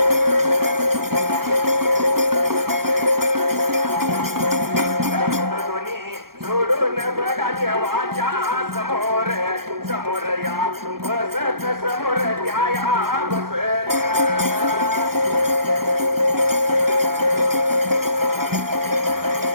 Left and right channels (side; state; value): left; late; 0.93 ms